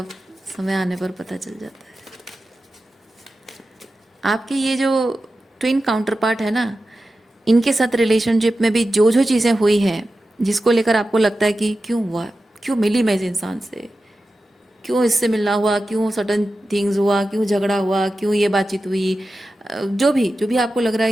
समय आने पर पता चल जाता है। आपके ये जो ट्विन काउंटर पार्ट है ना, इनके साथ रिलेशनशिप में भी जो जो चीज़ें हुई हैं, जिसको लेकर आपको लगता है कि क्यों हुआ, क्यों मिली मैं इस इंसान से, क्यों इससे मिलना हुआ, क्यों सडन थिंग्स हुआ, क्यों झगड़ा हुआ, क्यों ये बातचीत हुई, जो भी आपको लग रहा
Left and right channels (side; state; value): both; normal; correlation 0.93